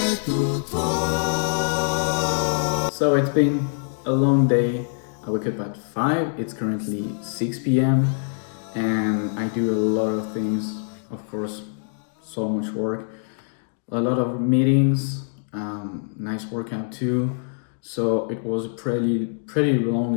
So it's been a long day. I wake up at 5, it's currently 6 p.m. and I do a lot of things, of course, so much work, a lot of meetings, nice workout too. So it was a pretty long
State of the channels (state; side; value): silent; right; digital silence